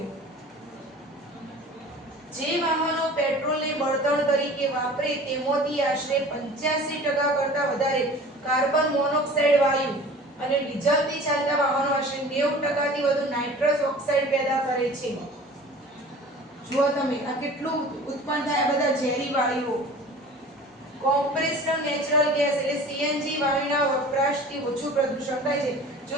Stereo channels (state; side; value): normal; both; correlation 0.42